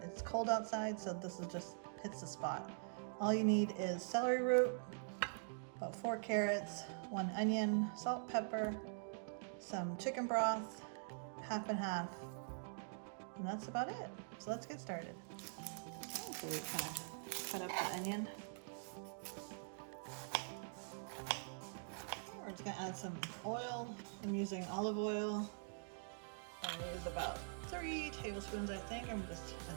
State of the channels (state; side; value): silent; left; digital silence